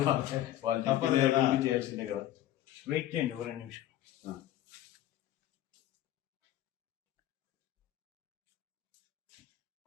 తప్పదు కదా, చేయాల్సిందే కదా. వెయిట్ చేయండి ఒక 2 నిమిషం.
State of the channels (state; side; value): quieter; right; 13.1 dB